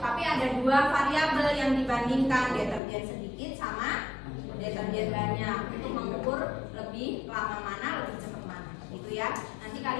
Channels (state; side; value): drops out; right; at 2.8 s